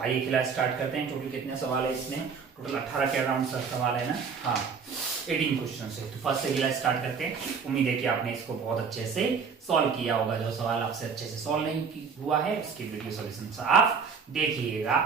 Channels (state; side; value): quieter; left; 5.8 dB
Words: क्लास स्टार्ट करते हैं। टोटल कितने सवाल है इसमें? टोटल 18 के अराउंड सवाल है ना। हाँ, 18 क्वेश्चन है। तो फर्स्ट से क्लास स्टार्ट करते हैं। उम्मीद है कि आपने इसको बहुत अच्छे से सॉल्व किया होगा। जो सवाल आपसे अच्छे से सॉल्व नहीं हुआ है उसकी वीडियो सॉल्यूशन आप देखिएगा